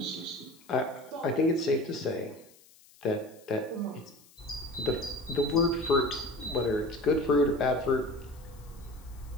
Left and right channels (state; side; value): noise; left; hiss, 26 dB below the sound